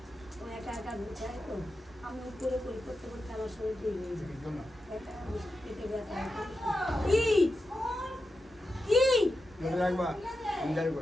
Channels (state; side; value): normal; both; correlation 0.89